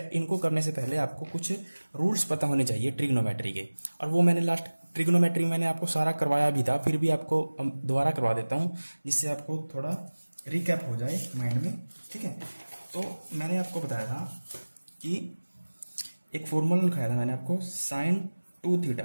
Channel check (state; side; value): inverted; both; correlation -1.00